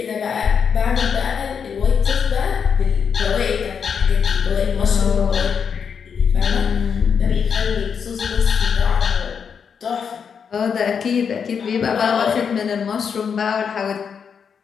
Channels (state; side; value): quieter; right; 6.7 dB